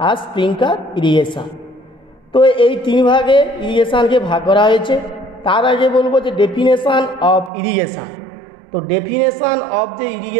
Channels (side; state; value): left; drops out; at 7.5 s